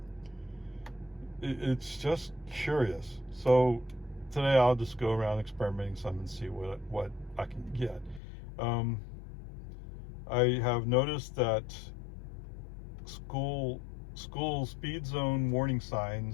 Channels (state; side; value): drops out; right; at 8.2 s